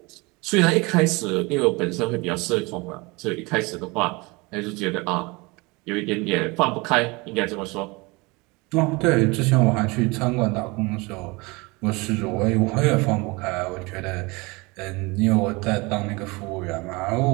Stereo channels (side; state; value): left; quieter; 25.6 dB